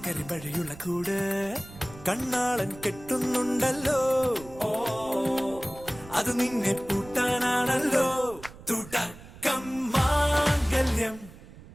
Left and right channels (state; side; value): noise; right; rumble, 18 dB below the sound